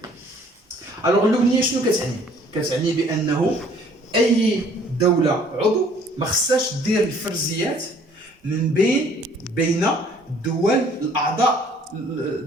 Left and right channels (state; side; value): normal; both; correlation 0.57